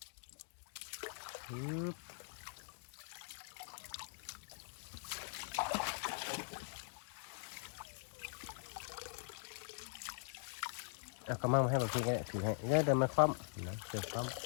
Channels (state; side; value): silent; right; digital silence